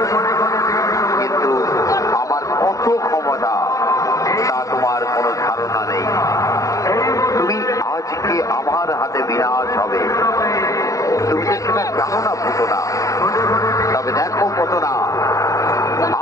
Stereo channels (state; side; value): late; right; 0.16 ms